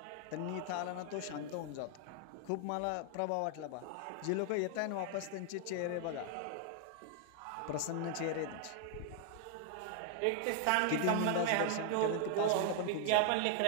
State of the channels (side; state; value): both; different; correlation 0.00